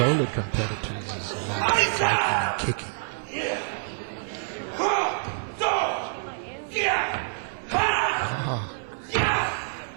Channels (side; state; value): left; silent; 60 dB below the other